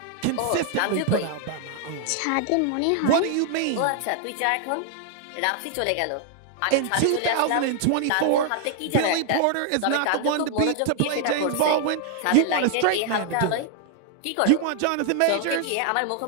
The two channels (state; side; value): different; both; correlation 0.00